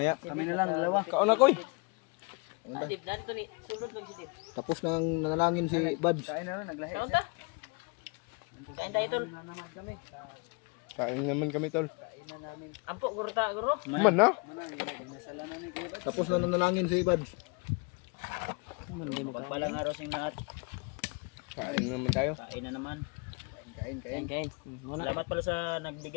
Kami na lang, dalawa. Kaon na koy. Dib na ito ni sulod lang si Dib. Tapos nang nanalangin si Babs. Kain na lang, naglahi Kaon siya. ta? Kain tayo tol. Kain naman kami tol. Ampo guro ta guro. Man na. Tapos nang nanalangin si Babs. Pagpalang araw sing lahat. Kain naman tayo. Kain na naman. Kain kain. Salamat pala sa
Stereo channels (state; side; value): quieter; right; 31.4 dB